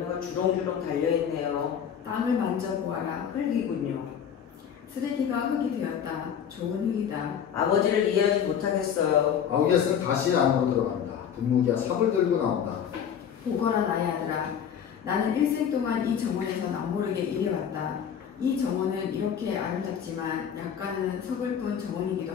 주렁주렁 달려있네요. 땅을 만져보아라. 흙이군요. 쓰레기가 흙이 되었다. 좋은 흙이다. 아버지를 이해하지 못하겠어요. 아우기아스는 다시 안으로 들어간다. 분무기와 삽을 들고 나온다. 보거라, 나의 아들아. 나는 일생 동안 이 정원에서 남모르게 일해왔다. 이 정원은 이렇게 아름답지만 약간은 서글픈 정원이기도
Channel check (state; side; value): quieter; right; 8.2 dB